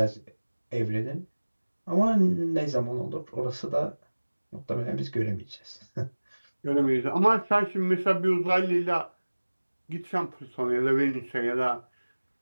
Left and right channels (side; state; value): both; inverted; correlation -1.00